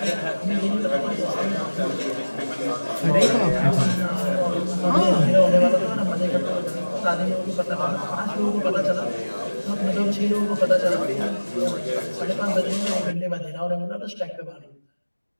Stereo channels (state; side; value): inverted; both; correlation -1.00